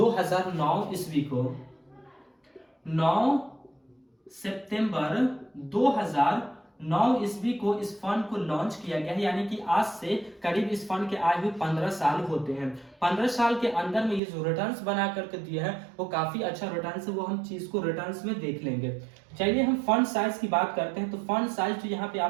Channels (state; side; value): drops out; left; at 14.2 s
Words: ईस्वी को। 9 सितंबर 2009 ईस्वी को इस फंड को लॉन्च किया गया है। यानी कि आज से करीब इस फंड के आए हुए 15 साल होते हैं। 15 साल के अंदर में ये जो रिटर्न्स बना करके दिया है वो काफी अच्छा रिटर्न्स है, वो हम चीज को रिटर्न्स में देख लेंगे। चलिए हम फंड साइज की बात करते हैं। तो फंड साइज जो यहाँ पे